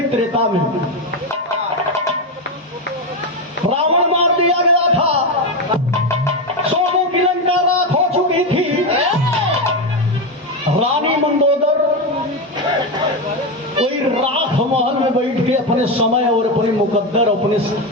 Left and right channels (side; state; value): both; normal; correlation 0.12